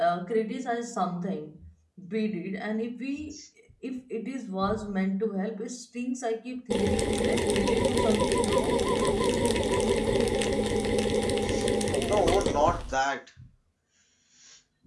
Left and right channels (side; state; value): both; identical; correlation 1.00